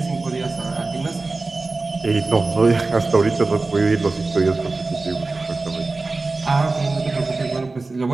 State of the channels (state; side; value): quieter; left; 3.5 dB